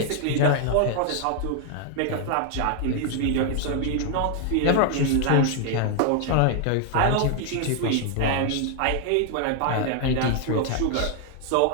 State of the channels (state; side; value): different; both; correlation 0.00